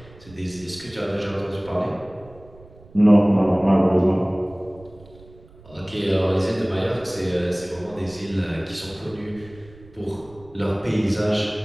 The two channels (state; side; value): noise; right; rumble, 23 dB below the sound